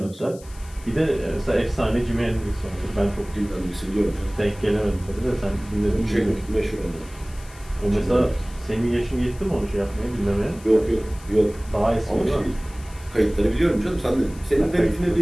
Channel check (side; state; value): left; noise; hiss, 22 dB below the sound